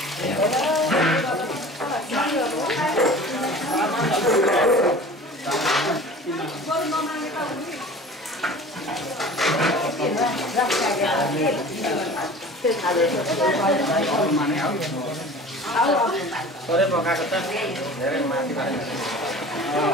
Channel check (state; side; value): normal; both; correlation 0.41